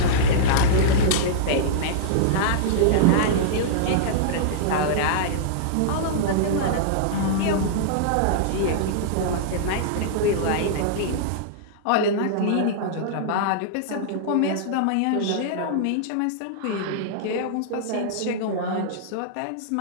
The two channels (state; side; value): different; both; correlation -0.02